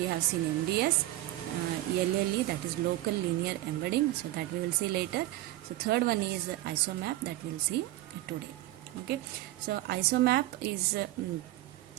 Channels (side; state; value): left; quieter; 16.2 dB